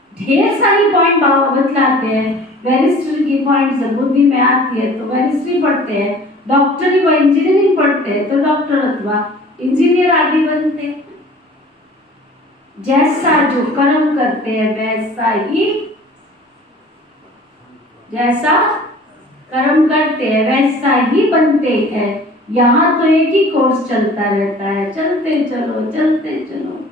ढेर सारी पॉइंट बाबा बतलाते हैं। वेरिस्ट्री की पॉइंट जब बुद्धि में आती है तो वेरिस्ट्री पढ़ते हैं। डॉक्टरी व इंजीनियरिंग पढ़ते हैं तो डॉक्टर अथवा इंजीनियर आदि बनते हैं। जैसा जो कर्म करते हैं वैसा ही, जैसा कर्म करते हैं वैसा ही बनते हैं। यहाँ तो एक ही कोर्स चलता रहता है, चलते चलो चलते चलो।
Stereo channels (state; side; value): normal; both; correlation 0.47